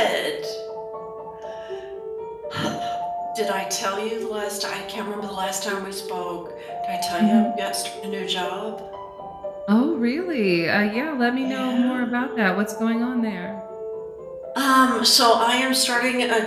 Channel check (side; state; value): both; identical; correlation 1.00